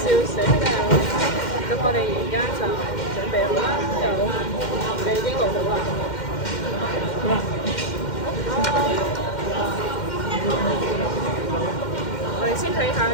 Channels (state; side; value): late; right; 2.1 ms